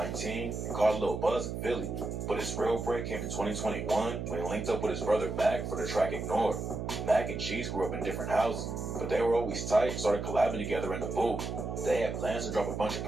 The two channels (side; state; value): right; noise; hum, 4 dB below the sound